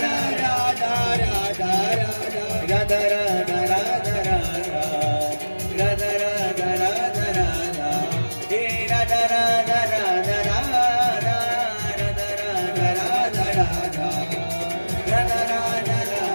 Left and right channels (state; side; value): inverted; both; correlation -1.00